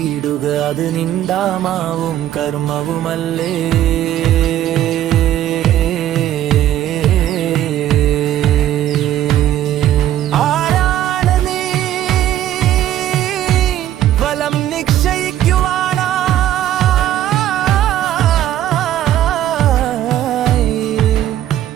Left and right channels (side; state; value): left; quieter; 12.1 dB